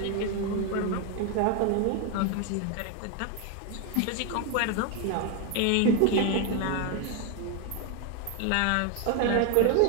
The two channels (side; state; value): both; different; correlation 0.01